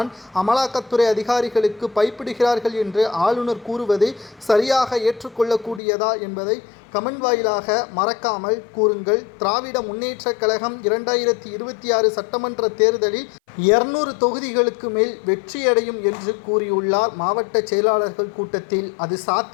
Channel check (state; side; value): drops out; right; at 5.8 s